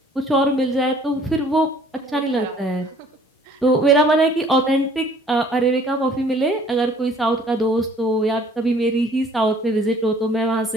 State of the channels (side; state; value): both; normal; correlation 0.56